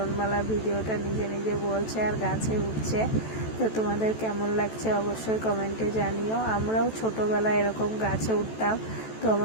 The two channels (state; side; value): late; right; 14 ms